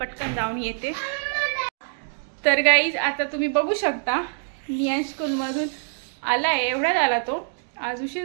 जाऊन येते। तर गाईज आता तुम्ही बघू शकता नियांश स्कूलमधून आलाय, एवढ्यात आला तो, आज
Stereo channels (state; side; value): silent; left; digital silence